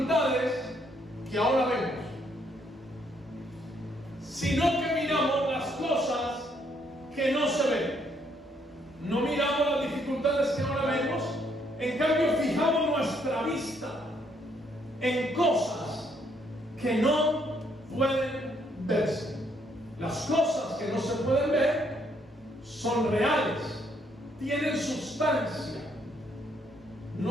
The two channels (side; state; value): both; normal; correlation 0.71